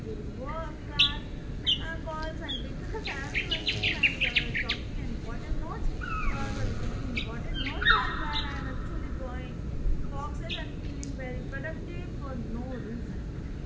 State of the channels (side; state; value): both; identical; correlation 1.00